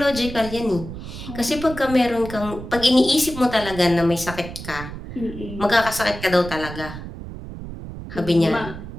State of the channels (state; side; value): noise; right; rumble, 11 dB below the sound